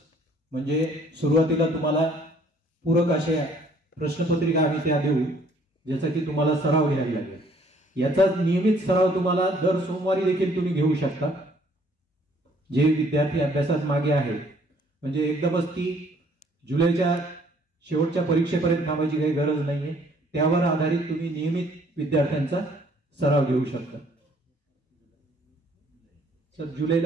म्हणजे सुरुवातीला तुम्हाला पूरक अशा प्रश्नपत्रिका आम्ही त्या देऊ ज्याचा की तुम्हाला सराव घ्यायला लागेल. याचा नियमित सराव तुम्हाला दर सोमवारी देखील तुम्ही घेऊ शकता. जे विद्यार्थी अभ्यासात मागे आहे, म्हणजे एकदमच ती जुलैच्या शेवटच्या परीक्षेपर्यंत थांबायची काही गरज नाहीये. त्यावर आधारित तुम्ही नियमित विद्यार्थ्यांचा सराव घेऊ शकता. सर,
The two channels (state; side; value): normal; both; correlation 0.61